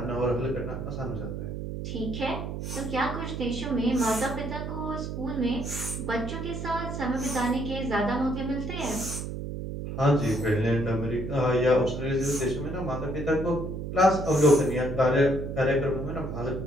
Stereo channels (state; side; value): noise; right; hum, 5 dB below the sound